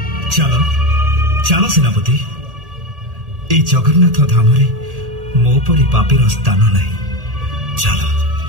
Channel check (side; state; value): left; late; 1.8 ms